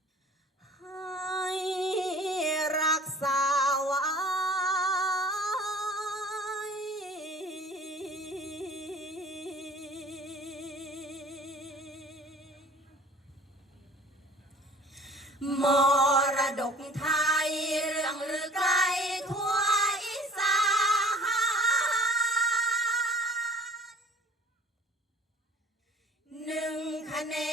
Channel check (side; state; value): both; normal; correlation 0.48